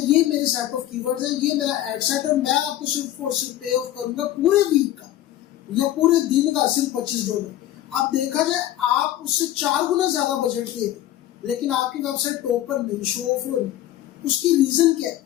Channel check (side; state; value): right; quieter; 13.2 dB